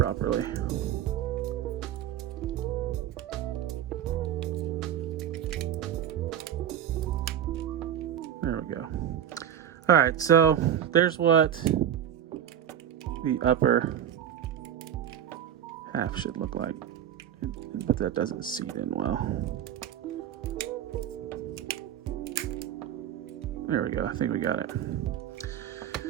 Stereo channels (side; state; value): left; quieter; 10.1 dB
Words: There we go. All right, so there's what the upper half should look like, but that doesn't seat in well. There we go. I think we got it.